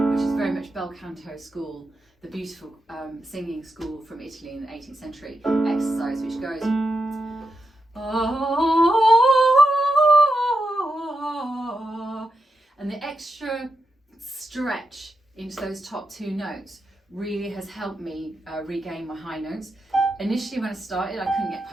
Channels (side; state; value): both; normal; correlation 0.86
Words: is very much bel canto school, the beautiful singing school from Italy in the 18th century exercise, which goes and the extra stretch into those top two notes really has helped me regain my high notes. Initially when I started, I couldn't get